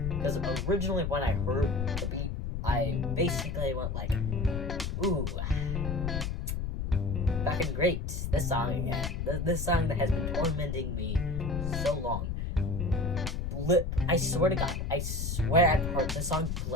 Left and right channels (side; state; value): left; noise; rumble, 2 dB below the sound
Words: Because originally when I heard the beat, I basically went like, ooh, fucking great, this song again. This song that has been tormenting me so long. I swear to God, I've heard this song